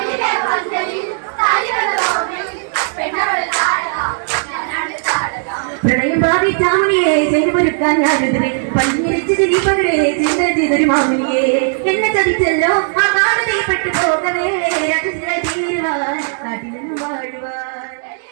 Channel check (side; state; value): left; silent; 66 dB below the other